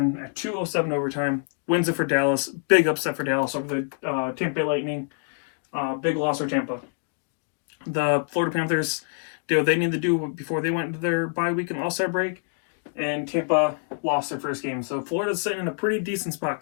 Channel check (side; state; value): right; silent; 61 dB below the other